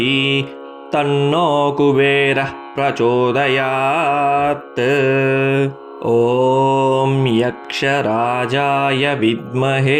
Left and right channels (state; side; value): identical; both; correlation 1.00